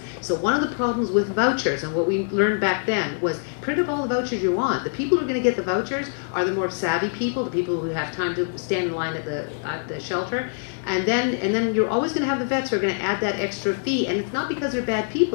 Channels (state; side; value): silent; right; 62 dB below the other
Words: So one of the problems with vouchers, and what we learned back then, was print up all the vouchers you want. The people who are going to get the vouchers are the more savvy people, the people who have time to stand in line at the shelter. And then you're always going to have the vets who are going to add that extra fee. And it's not because they're bad